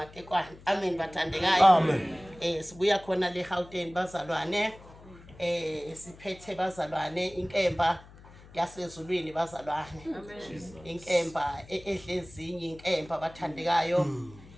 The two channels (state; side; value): noise; left; hum, 21 dB below the sound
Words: amen bathandekayo amen sibuya khona le Gauteng bazalwane siphethe bazalwane inkemba yasezulwini bazalwane inkemba edle ezinye inkemba bathandekayo